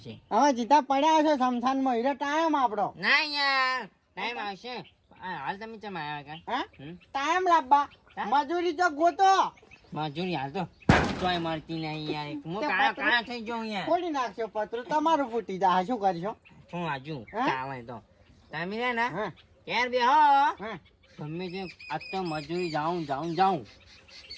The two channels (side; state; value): both; identical; correlation 1.00